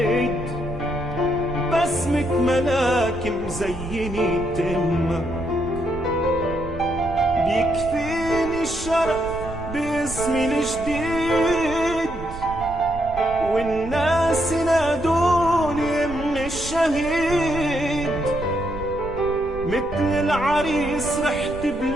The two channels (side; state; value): right; noise; rumble, 11 dB below the sound